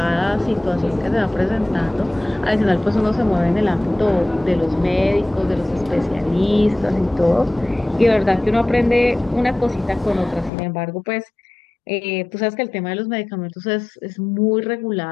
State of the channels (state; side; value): drops out; right; at 10.5 s